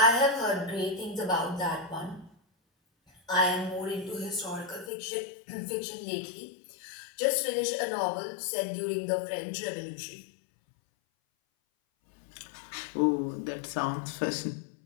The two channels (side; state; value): right; drops out; at 4.9 s